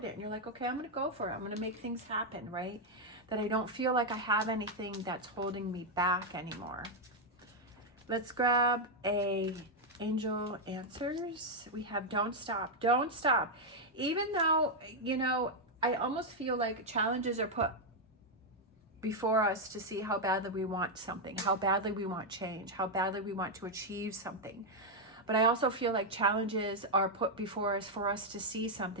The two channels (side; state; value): both; normal; correlation 0.00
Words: and you're like, okay, I'm going to go for it. I'm going to make things happen, right? That I don't feel like I have anything that's holding me back anymore. Let's grab a angel answers. We have don't stop. Don't stop. Even though, you know, I almost feel like challenges are put before us to see how badly we want something, how badly we want change, how badly we want to achieve something. But I also feel like challenges are put before us for us to see